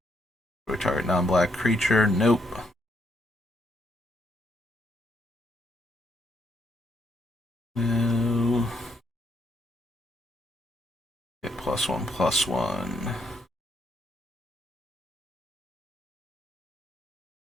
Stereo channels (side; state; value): both; normal; correlation 0.74